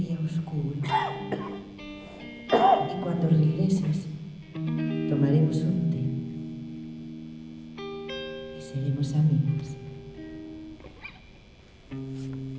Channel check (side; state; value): both; identical; correlation 1.00